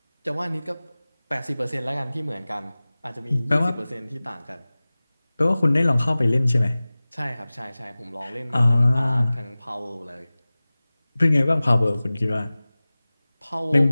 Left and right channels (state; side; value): inverted; both; correlation -0.98